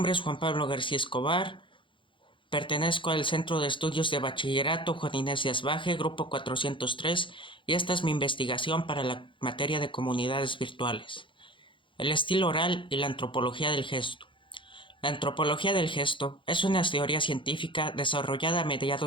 es Juan Pablo García Escobar, pertenezco al Centro de Estudios de Bachillerato Juan Inés de Asbaje, Grupo 403, y esta es mi investigación para la materia de comunidades virtuales. El estilo oral y la antropología del gesto. La antropología del gesto es una teoría científica desarrollada a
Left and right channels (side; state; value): right; late; 0.24 ms